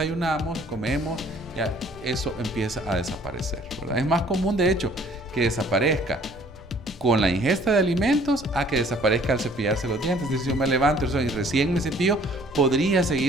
comemos, ya eso empieza a desaparecer, ¿verdad? Es más común, de hecho, que desaparezca con la ingesta de alimentos a que desaparezca al cepillarse los dientes. Es decir, si yo me levanto y recién me cepillo, podría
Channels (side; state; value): both; normal; correlation 0.57